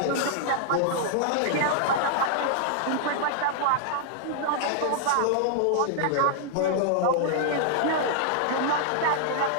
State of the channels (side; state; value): both; different; correlation -0.01